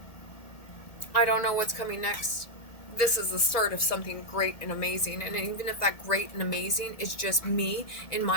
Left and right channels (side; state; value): right; late; 1.9 ms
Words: I don't know what's coming next. This is the start of something great and amazing. And even if that great and amazing is just me in